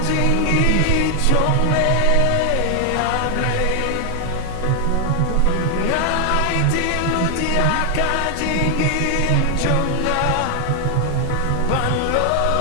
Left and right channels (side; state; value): both; different; correlation 0.00